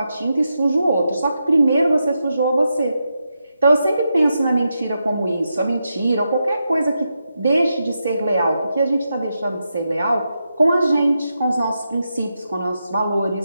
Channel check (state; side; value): inverted; both; correlation -0.86